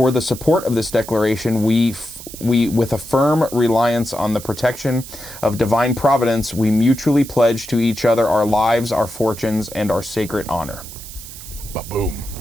the support of this declaration, we with a firm reliance on the protection of divine providence, we mutually pledge to each other our lives, our fortunes, and our sacred honor. Ba-boom.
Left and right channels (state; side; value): noise; right; hiss, 14 dB below the sound